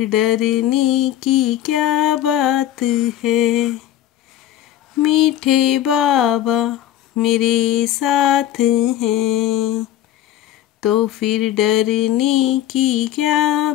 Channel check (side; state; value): right; quieter; 12.4 dB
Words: डरने की क्या बात है। मीठे बाबा मेरे साथ हैं, तो फिर डरने की क्या